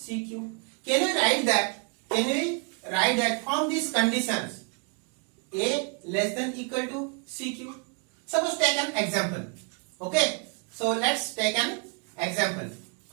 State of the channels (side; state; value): left; quieter; 36.9 dB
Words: Can we write that from these conditions a less than equal to cq? Suppose take an example. Okay, so let's take an example.